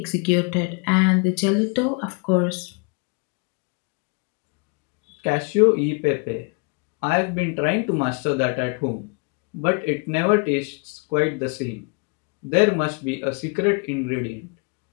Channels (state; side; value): quieter; right; 33.7 dB